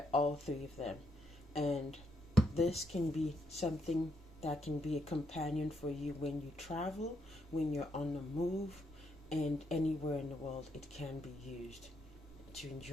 all 3 of them. And this can be something that can be a companion for you when you travel, when you're on the move, and anywhere in the world it can be used to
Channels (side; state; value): both; normal; correlation 0.76